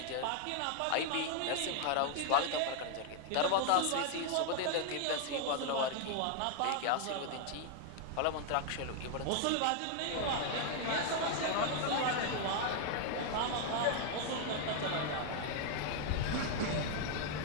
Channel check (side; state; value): both; different; correlation 0.00